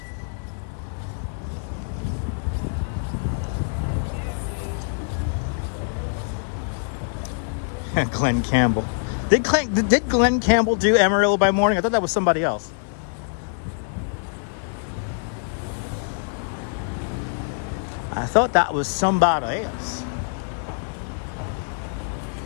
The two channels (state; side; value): silent; right; digital silence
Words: Glenn Campbell. Did Glenn Campbell do Amarillo by Morning? I thought that was somebody else. I thought that was somebody else.